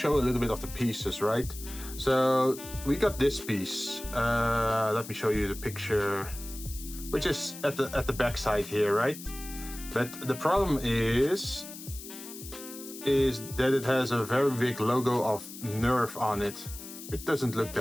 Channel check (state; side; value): noise; left; hiss, 13 dB below the sound